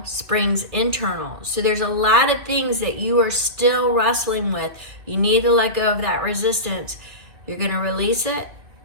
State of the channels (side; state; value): left; late; 2.5 ms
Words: springs internal. So there's a lot of things that you are still wrestling with. You need to let go of that resistance. You're going to release it,